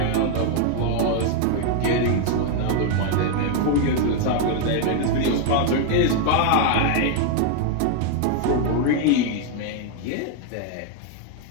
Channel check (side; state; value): both; different; correlation 0.00